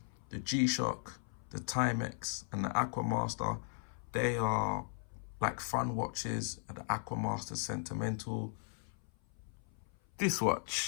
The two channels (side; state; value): right; silent; 53 dB below the other